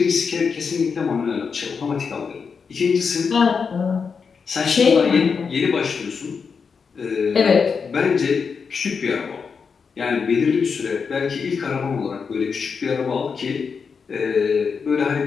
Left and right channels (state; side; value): quieter; right; 5.7 dB